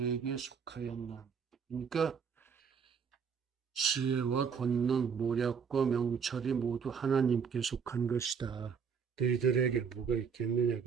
속하였나. 그러니까 지혜와 권능, 모략과 명철이 모두 하나님께 속한 것이다. 너희들에게 뭐가 있겠느냐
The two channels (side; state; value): left; quieter; 6.4 dB